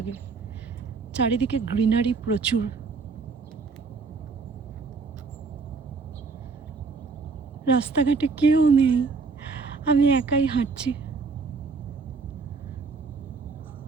চারিদিকে গ্রিনারি প্রচুর। রাস্তাঘাটে কেউ নেই, আমি একাই হাঁটছি।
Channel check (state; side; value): quieter; left; 4.6 dB